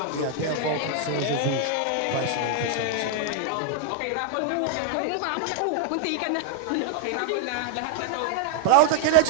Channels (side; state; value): both; different; correlation 0.00